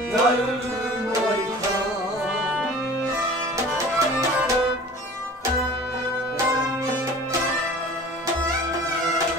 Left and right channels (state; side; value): normal; both; correlation 0.43